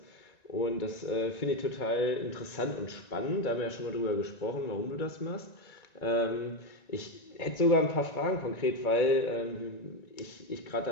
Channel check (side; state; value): right; late; 1.9 ms